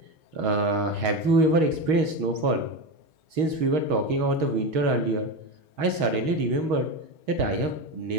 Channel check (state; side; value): late; left; 6.3 ms